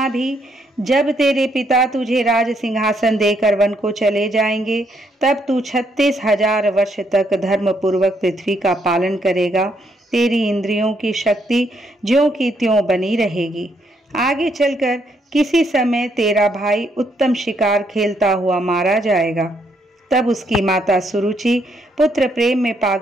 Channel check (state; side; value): normal; both; correlation 0.73